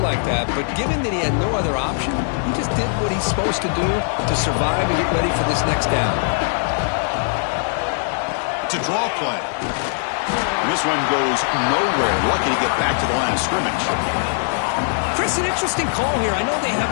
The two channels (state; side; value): silent; right; digital silence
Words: like that, but given that he had no other option, he just did what he's supposed to do to survive and get ready for this next down. It's a draw play. And this one goes nowhere. Lucky to get back to the line of scrimmage. Chris, an interesting call here. I know they have